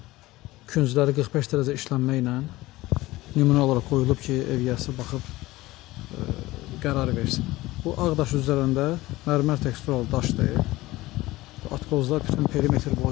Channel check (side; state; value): right; quieter; 18.5 dB